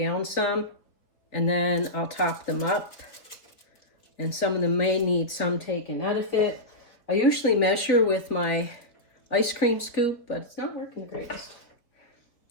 some, and then I'll top them up. And some of them may need some taken out of it. I usually measure with my ice cream scoop, but it's not working the greatest.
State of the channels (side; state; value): right; late; 3.9 ms